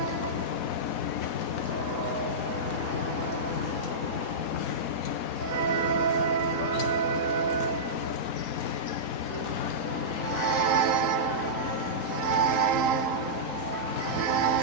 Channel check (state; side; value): late; right; 3.8 ms